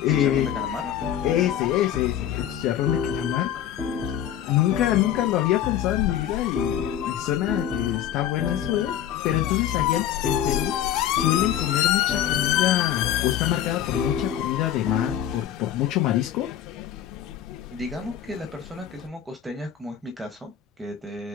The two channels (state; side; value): quieter; right; 10.7 dB